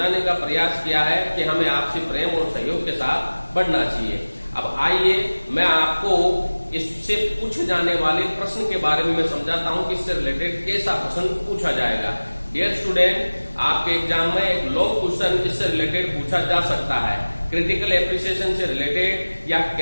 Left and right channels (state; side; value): inverted; both; correlation -1.00